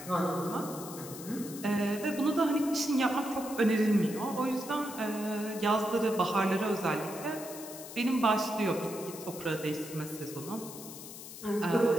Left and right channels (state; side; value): noise; left; hiss, 13 dB below the sound